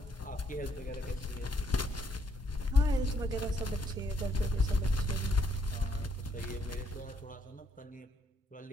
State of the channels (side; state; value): both; normal; correlation 0.71